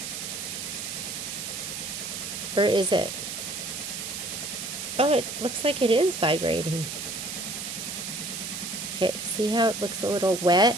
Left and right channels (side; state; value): right; noise; hiss, 6 dB below the sound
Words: Or is it? Oh, it looks like it is vibrating. Okay, see how it looks a little wet?